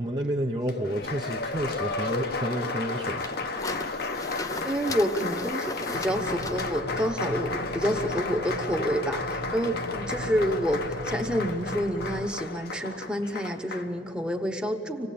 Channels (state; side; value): normal; both; correlation 0.54